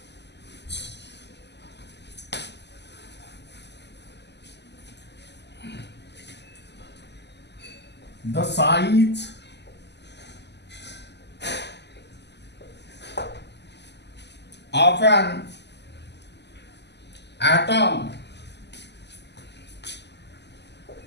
the size of an atom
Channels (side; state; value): right; late; 0.50 ms